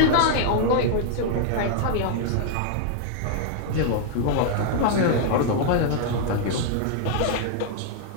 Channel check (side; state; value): both; different; correlation -0.01